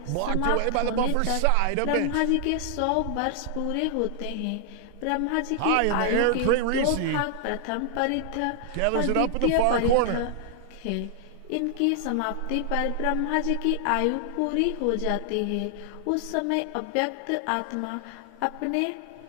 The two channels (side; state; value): both; different; correlation 0.00